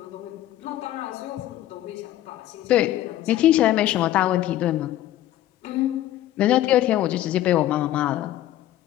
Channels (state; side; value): quieter; right; 13.7 dB